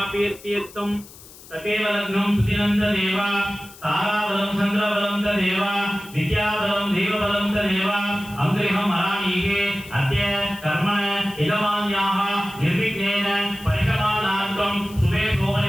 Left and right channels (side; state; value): left; noise; hiss, 20 dB below the sound